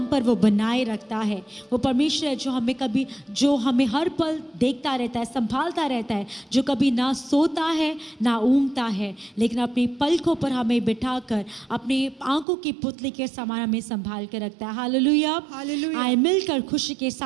पर वो बनाए रखता है। वो परमेश्वर है जो हमें हर पल देखता रहता है, संभालता रहता है, जो कभी ना सोता है ना ऊँगता है, लेकिन अपनी पलकों पर हमें बिठाकर अपनी आंखों की पुतली के समान हमें संभाल कर रखता है। Hallelujah, hallelujah. आए मिलकर खुशी के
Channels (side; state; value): left; drops out; at 12.5 s